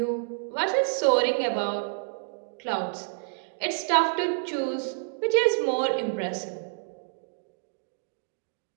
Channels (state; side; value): silent; left; digital silence